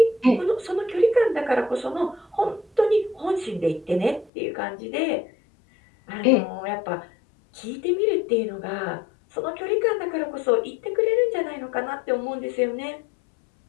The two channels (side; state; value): right; drops out; at 4.3 s